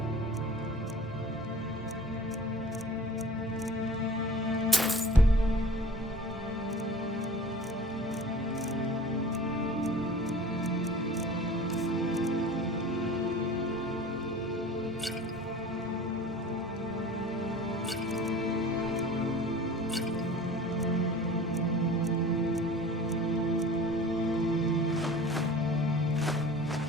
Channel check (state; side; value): normal; both; correlation 0.42